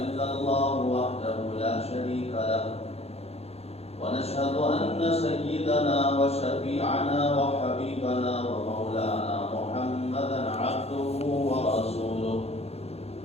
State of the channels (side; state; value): right; late; 0.30 ms